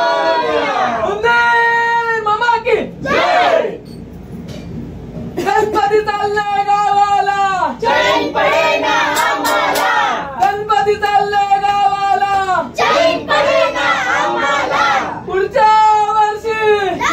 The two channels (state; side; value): identical; both; correlation 1.00